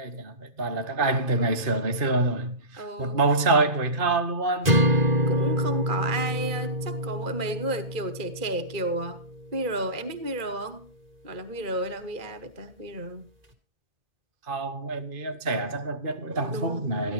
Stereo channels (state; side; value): late; left; 2.4 ms